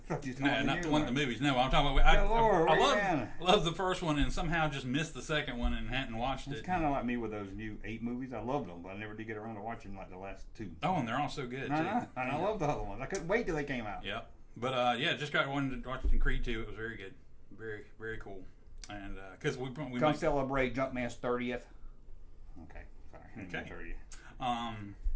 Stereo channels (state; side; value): identical; both; correlation 1.00